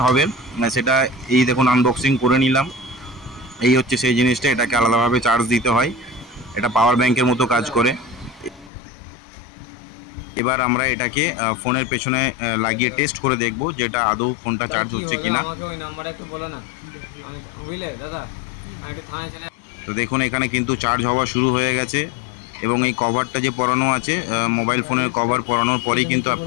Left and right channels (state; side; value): drops out; right; at 8.7 s